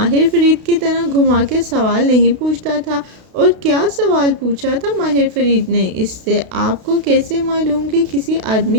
فرید کی طرح گھما کے سوال نہیں پوچھتا تھا۔ اور کیا سوال پوچھا تھا ماہر فرید نے اس سے؟ آپ کو کیسے معلوم کہ کسی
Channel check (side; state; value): left; late; 32 ms